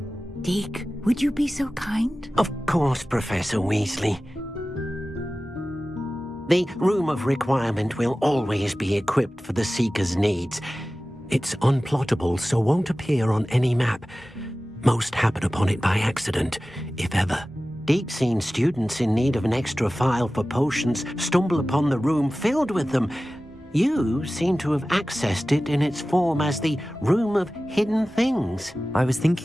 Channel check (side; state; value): both; normal; correlation 0.96